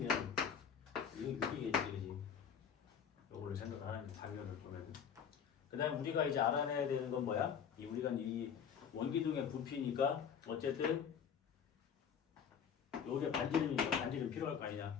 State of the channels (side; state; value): right; quieter; 7.5 dB